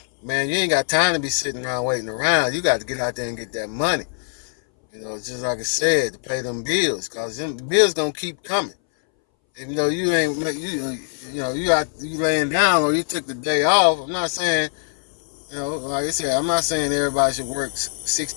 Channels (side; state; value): right; silent; 62 dB below the other